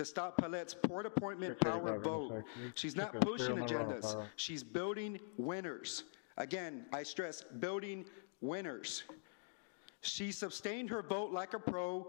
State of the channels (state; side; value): silent; right; digital silence